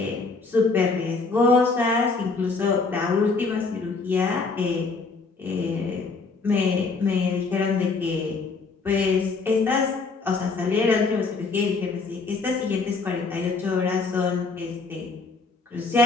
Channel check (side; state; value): right; quieter; 4.1 dB